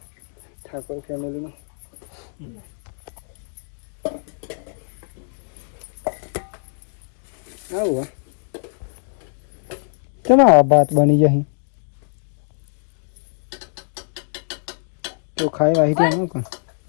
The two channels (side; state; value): right; silent; digital silence